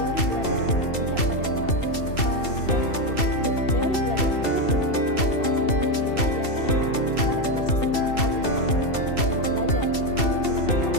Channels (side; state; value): right; late; 2.7 ms